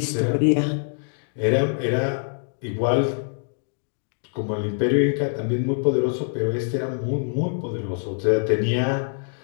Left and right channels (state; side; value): silent; right; digital silence